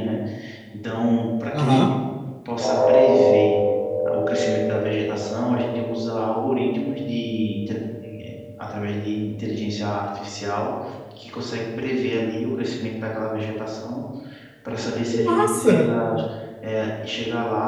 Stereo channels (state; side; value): identical; both; correlation 1.00